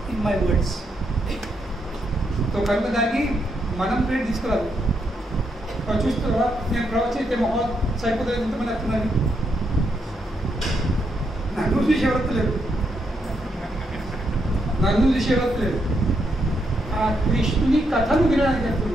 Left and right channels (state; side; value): normal; both; correlation 0.79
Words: in my words. So కనుక దానికి మనం ప్రేట్ తీసుకురాదు. చూస్తారా, నేను ప్రవచయితే మహా సరిపోతుంది, ఎంతమంది వస్తున్నారు, నన్ను చూసి ఎవరలేదు, నన్ను చూసి ఎవరలేదు. ఆ కృష్ణుని కథను వినడానికి